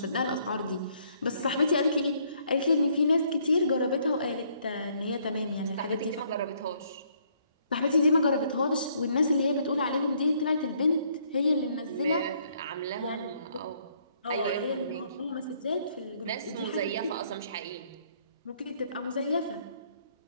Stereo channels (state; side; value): inverted; both; correlation -0.67